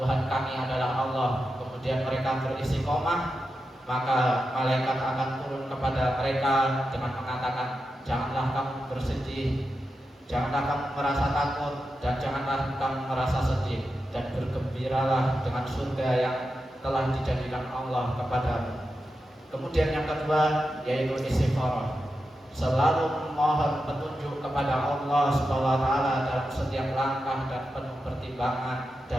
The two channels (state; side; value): normal; both; correlation 0.89